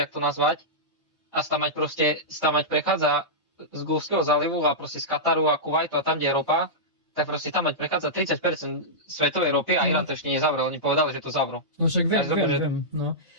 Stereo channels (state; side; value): normal; both; correlation -0.13